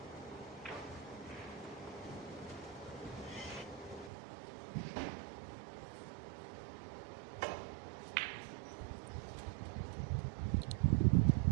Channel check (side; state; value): left; drops out; at 4.1 s